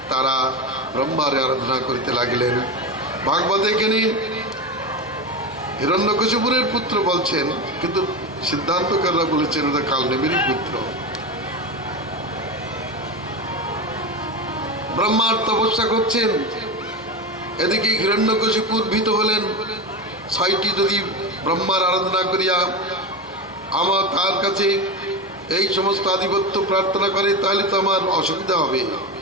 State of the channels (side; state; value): both; normal; correlation 0.20